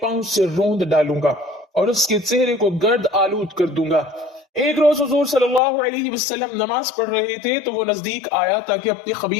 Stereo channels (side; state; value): right; drops out; at 5.6 s